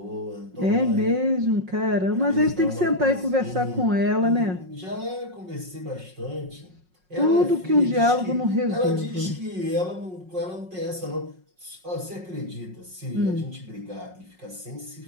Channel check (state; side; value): late; left; 5.5 ms